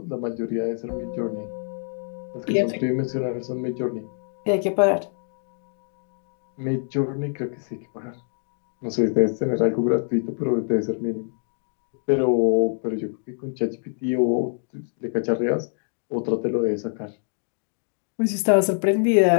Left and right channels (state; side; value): silent; right; digital silence